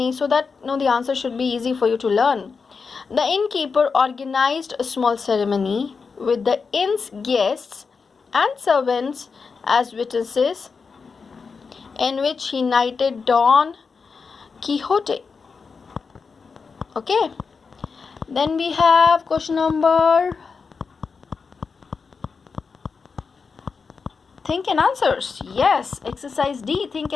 so that the answer should be easy for you to learn. The innkeeper organized a small ceremony with the inn's guests and servants as witnesses, in which he knighted Don Quixote. Okay. Then we have question number Think and Answers. Yes, exercise D, Think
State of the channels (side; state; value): right; quieter; 5.1 dB